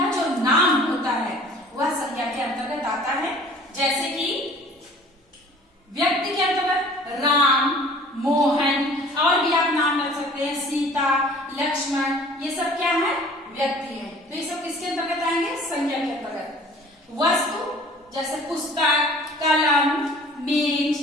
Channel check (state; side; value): normal; both; correlation 0.49